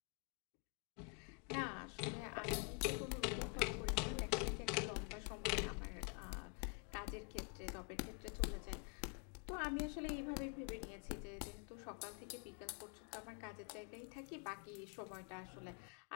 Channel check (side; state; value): right; quieter; 35.8 dB